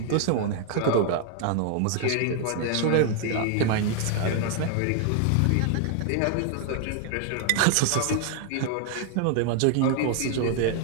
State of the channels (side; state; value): both; different; correlation 0.00